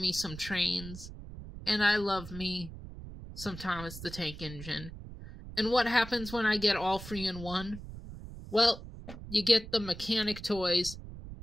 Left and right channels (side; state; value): right; noise; rumble, 12 dB below the sound